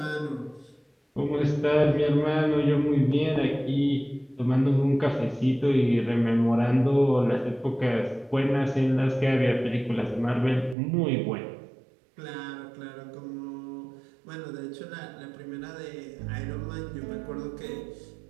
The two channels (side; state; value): left; drops out; at 10.8 s